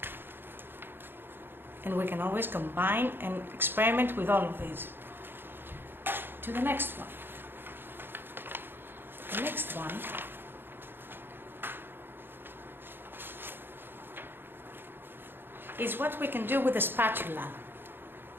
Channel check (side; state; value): left; late; 0.10 ms